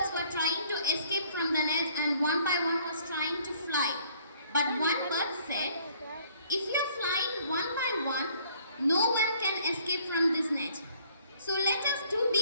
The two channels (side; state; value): both; inverted; correlation -0.60